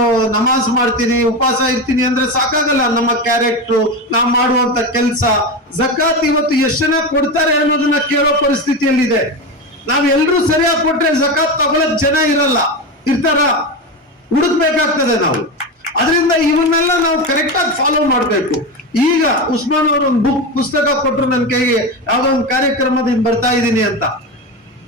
ನಮಾಜ್ ಮಾಡ್ತೀನಿ, ಉಪವಾಸ ಇರ್ತೀನಿ ಅಂದ್ರೆ ಸಾಕಾಗಲ್ಲ. ನಮ್ಮ ಕ್ಯಾರೆಕ್ಟರ್, ನಾವು ಮಾಡುವಂತ ಕೆಲಸ, ಜಕಾತ್ ಇವತ್ತು ಎಷ್ಟು ಜನ ಕೊಡ್ತಾರೆ ಅನ್ನೋದನ್ನ ಕೇಳೋ ಪರಿಸ್ಥಿತಿಯಲ್ಲಿದೆ. ನಾವೆಲ್ಲರೂ ಸರಿಯಾಗಿ ಕೊಟ್ರೆ ಜಕಾತ್ ತಗೊಳಕ್ ಜನ ಇರ್ತಾರ, ಹುಡುಕ್ಬೇಕಾಗ್ತದೆ ನಾವು. ಅದರಿಂದ ಇವನ್ನೆಲ್ಲ ನಾವು ಕರೆಕ್ಟ್ ಆಗಿ ಫಾಲೋ ಮಾಡ್ಬೇಕು. ಈಗ ಉಸ್ಮಾನ್ ಅವರು ಒಂದು ಪುಸ್ತಕ ಕೊಟ್ಟರು ನನ್ನ ಕೈಗೆ, ಯಾವ್ದೋ ಒಂದು ಕಾರ್ಯಕ್ರಮದಿಂದ ಬರ್ತಾ ಇದ್ದೀನಿ ಅಂತ.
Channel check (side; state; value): both; normal; correlation 0.19